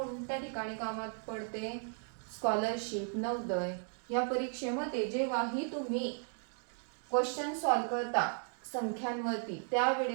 ठिकाणी कामात पडते? स्कॉलरशिप, नवोदय या परीक्षेमध्ये जेव्हाही तुम्ही क्वेश्चन सॉल्व करता संख्यांवरती,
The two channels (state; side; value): silent; left; 54 dB below the other